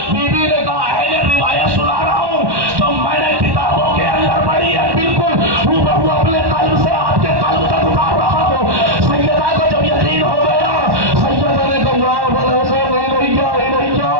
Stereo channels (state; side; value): late; left; 1.1 ms